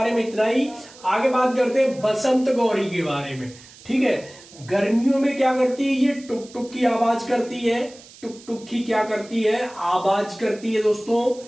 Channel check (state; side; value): noise; right; hiss, 21 dB below the sound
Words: में इतना ही। आगे बात करते हैं बसंत गौरी के बारे में। ठीक है, गर्मियों में क्या करती है? ये टुक टुक की आवाज करती है। टुक टुक की क्या करती है? आवाज करती है